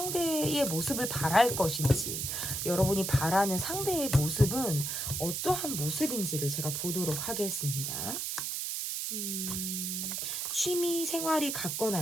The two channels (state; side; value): noise; right; hiss, 2 dB below the sound